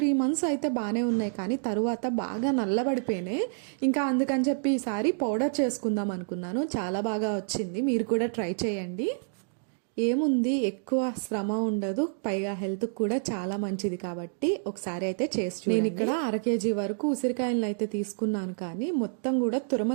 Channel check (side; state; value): left; silent; digital silence